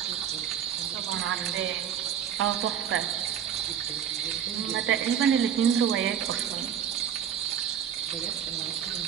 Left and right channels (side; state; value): left; quieter; 8.9 dB